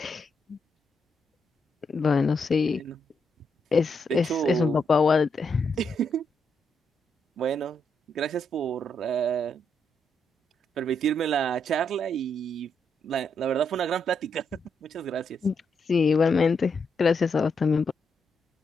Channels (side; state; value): both; normal; correlation 0.79